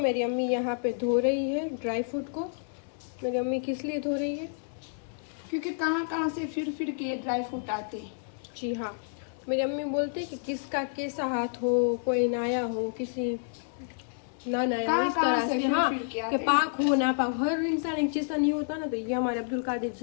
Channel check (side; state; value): right; silent; 58 dB below the other